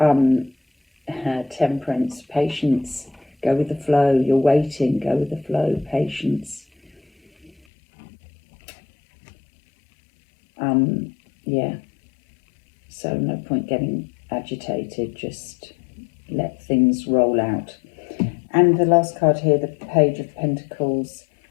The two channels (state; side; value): drops out; right; at 7.5 s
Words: temperance, patience, go with the flow. You're waiting, go with the flow, patience. Yeah, so no point getting agitated, just let things roll out. And the last card here, the Page of Pentacles,